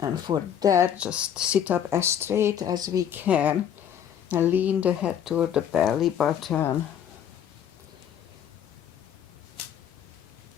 for that, just sit up as straight as we can and lean the head toward the belly button.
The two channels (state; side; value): quieter; right; 9.2 dB